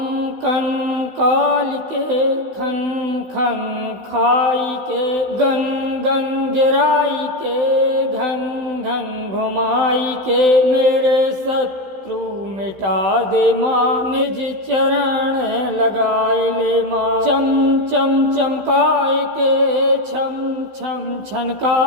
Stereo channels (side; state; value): left; late; 16 ms